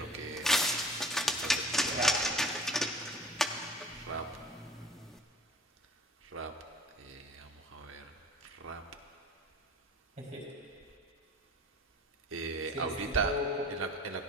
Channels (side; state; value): both; normal; correlation 0.46